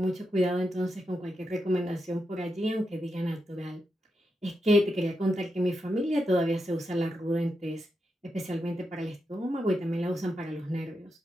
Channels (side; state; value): both; normal; correlation 0.86